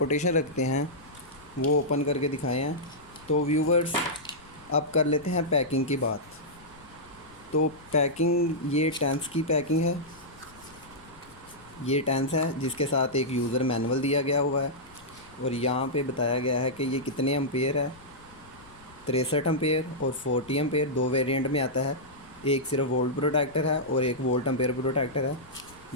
रखते हैं वो ओपन करके दिखाए हैं। तो व्यूवर्स, अब कर लेते हैं पैकिंग की बात। तो पैकिंग, ये टेंस की पैकिंग है। ये टेंस है जिसके साथ एक यूज़र मैनुअल दिया गया हुआ है, और यहाँ पे बताया गया है कि ये कितने एम्पेयर है। 63 एम्पेयर और 40 एम्पेयर 2 वेरिएंट में आता है। एक सिर्फ वोल्ट प्रोटेक्टर है और एक वोल्ट एम्पेयर प्रोटेक्टर है।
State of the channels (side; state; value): left; noise; rumble, 24 dB below the sound